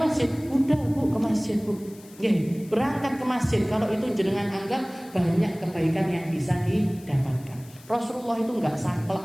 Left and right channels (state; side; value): noise; left; hiss, 23 dB below the sound